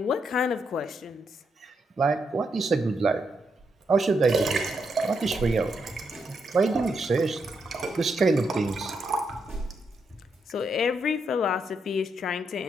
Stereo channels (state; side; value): normal; both; correlation 0.80